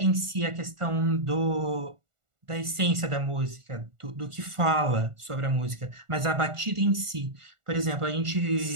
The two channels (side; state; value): left; late; 1.4 ms